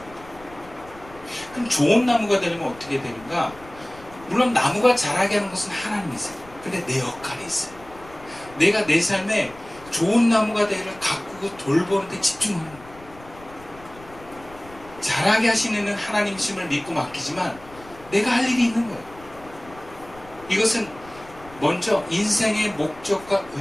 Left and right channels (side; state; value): left; noise; rumble, 21 dB below the sound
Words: 그럼 좋은 나무가 되려면 어떻게 되는가? 물론 나무가 자라게 하는 것은 하나님이세요. 근데 내 역할이 있어요. 내가 내 삶에 좋은 나무가 되기를 가꾸고 돌보는 데 집중하는 거예요. 자라게 하시는 이는 하나님이심을 믿고 맡기지만 내가 할 일이 있는 거예요. 이것은 먼저 인생의 목적과